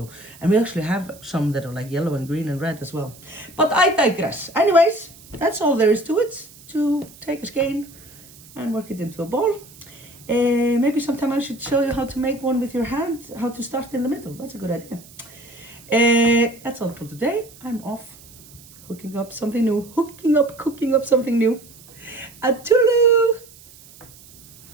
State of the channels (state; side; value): noise; right; hiss, 22 dB below the sound